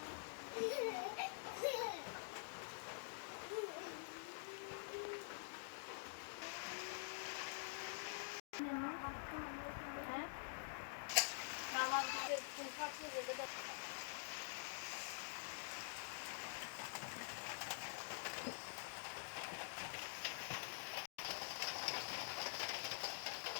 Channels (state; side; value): silent; right; digital silence